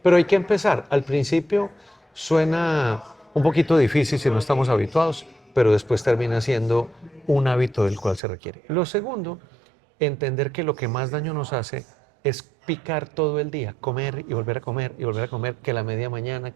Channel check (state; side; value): drops out; left; at 8.2 s